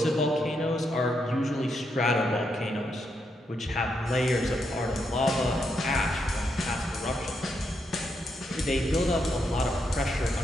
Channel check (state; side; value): normal; both; correlation 0.80